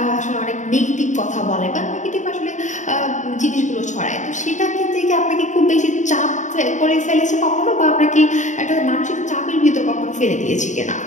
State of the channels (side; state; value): right; late; 0.35 ms